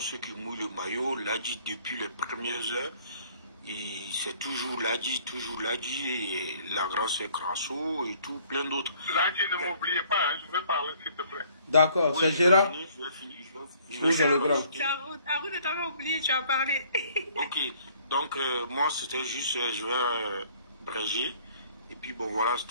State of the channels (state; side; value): inverted; both; correlation -0.59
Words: qui mouillent le maillot. Ladji depuis les premières heures, c'est toujours Ladji, et la grande sœur Crasso et tout, plein d'autres. Ladji, ne m'oubliez pas, hein, je vais parler s'il te plaît. D'accord, c'est Gérard. Je vais finir. Oui, c'est le grand. Arun ne t'avait oublié, tu as parlé. Ok, donc moi c'était juste, je vais bréger. Et puis bon voilà,